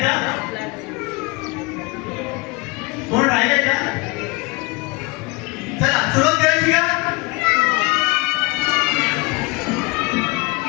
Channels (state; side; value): quieter; right; 25.5 dB